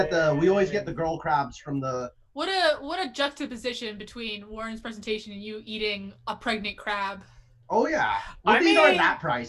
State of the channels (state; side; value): identical; both; correlation 1.00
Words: the girl crabs from the. What a juxtaposition between Warren's presentation and you eating a pregnant crab. Oh yeah, well, I these mean- aren't that